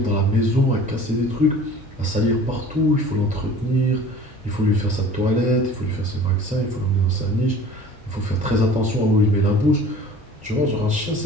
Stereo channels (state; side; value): normal; both; correlation 0.45